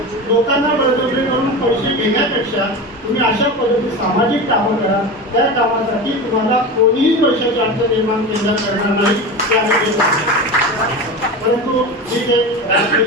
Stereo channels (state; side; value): normal; both; correlation 0.26